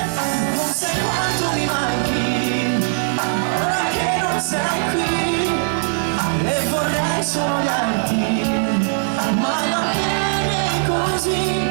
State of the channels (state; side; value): silent; left; digital silence